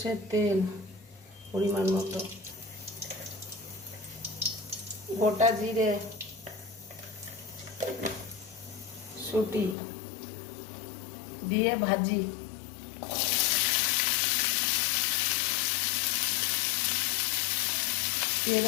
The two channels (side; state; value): right; drops out; at 9.8 s